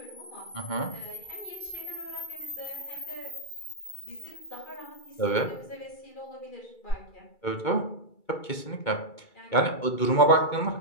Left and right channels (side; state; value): right; late; 2.2 ms